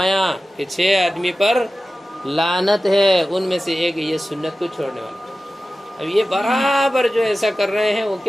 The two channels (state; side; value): normal; both; correlation 0.95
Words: کہ 6 آدمی پر لعنت ہے، ان میں سے ایک یہ سنت کو چھوڑنے والا. اب یہ برابر جو ایسا کر رہے ہیں وہ